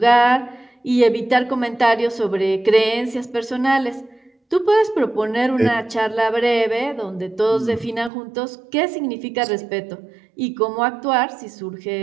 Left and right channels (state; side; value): drops out; left; at 8.1 s